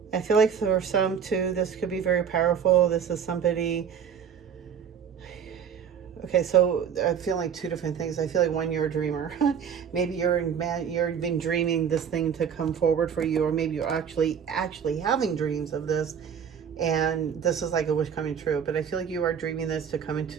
I feel like for some too, this could be very powerful. This is somebody. Okay, so I feel like 2 different things. I feel like one, you're a dreamer. Maybe you've been dreaming this thing to come forward for you, or maybe you're actually having dreams of this, and this is like a wish coming true. But I feel like you are dreaming this to come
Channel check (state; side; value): quieter; left; 7.6 dB